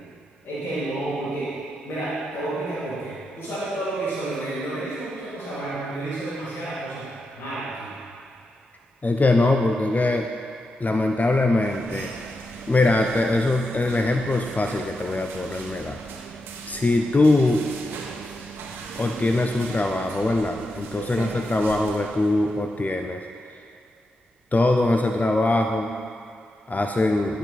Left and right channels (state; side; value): normal; both; correlation 0.87